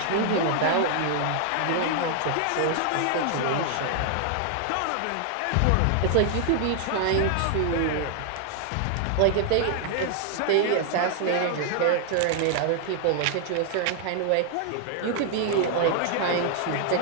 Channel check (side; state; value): both; different; correlation 0.00